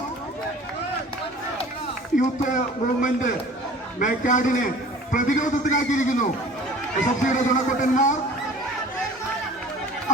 Youth movement മേക്കാടിനെ പ്രതിരോധത്തിലാക്കിയിരിക്കുന്നു. SFCയുടെ ചുണക്കുട്ടന്മാർ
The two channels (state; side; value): normal; both; correlation 0.46